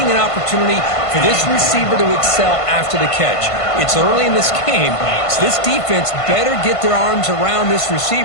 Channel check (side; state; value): right; late; 1.5 ms